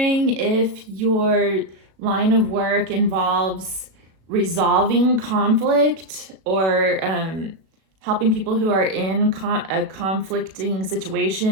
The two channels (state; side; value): late; left; 37 ms